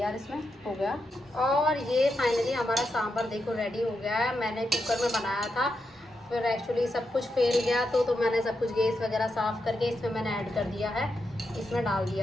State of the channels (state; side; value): normal; both; correlation 0.85